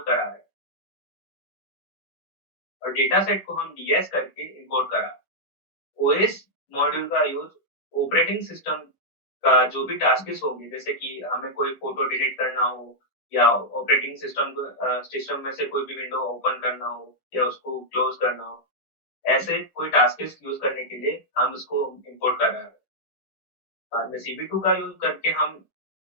करा रहे हैं और डेटा सेट को हम डीएस करके इंपोर्ट करा रहे हैं। ओएस मॉड्यूल का यूज ऑपरेटिंग सिस्टम का जो भी टास्क होंगे, जैसे कि हमें कोई फोटो डिलीट करना हो या ऑपरेटिंग सिस्टम में से कोई भी विंडो ओपन करना हो या उसको क्लोज करना हो, ऐसे कोई टास्क यूज करने के लिए हम उसको इंपोर्ट कर रहे हैं। बाद में CV2 का यूज करके हम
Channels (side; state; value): right; late; 10 ms